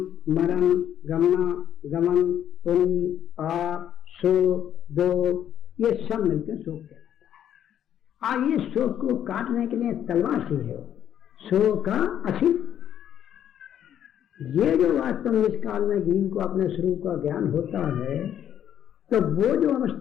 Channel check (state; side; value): quieter; right; 10.1 dB